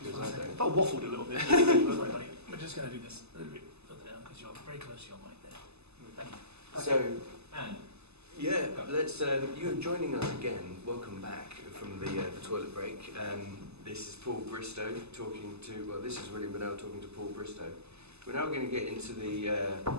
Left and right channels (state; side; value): late; left; 0.80 ms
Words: one I second. don't. But waffled a little bit. Sorry, buddy. We're just going to do this a little bit further down because you're very close to your mic there. Thank you. So, And yeah, let's. You're joining us again. Welcome back from the toilet break. This is Paul Bristow talking to. Well, this is William Bennell talking to Paul Bristow. We're now going to get into